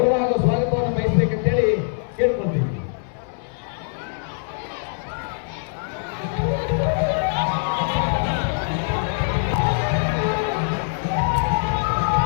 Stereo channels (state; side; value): silent; right; digital silence